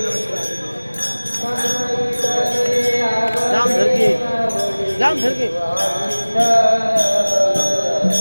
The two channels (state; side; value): inverted; both; correlation -1.00